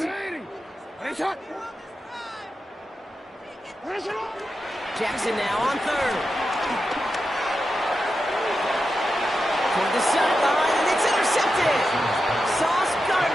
Jackson now on 3rd. For the sideline, and it's intercepted. Sauce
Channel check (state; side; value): normal; both; correlation 0.89